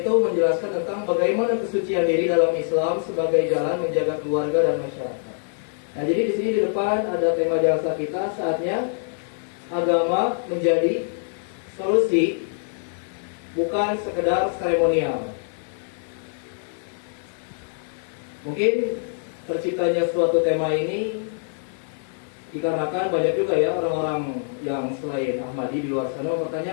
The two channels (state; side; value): silent; right; 62 dB below the other